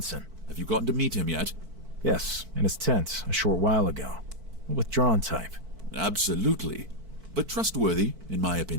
Have you gotten to meet him yet? Yes, in his tent a short while ago. A withdrawn type. Absolutely. But trustworthy, in my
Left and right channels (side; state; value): left; late; 4.5 ms